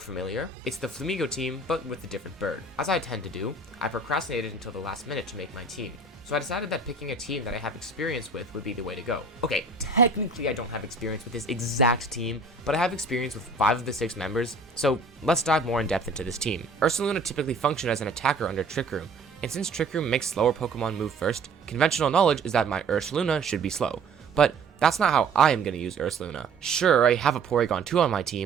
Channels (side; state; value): left; quieter; 3.6 dB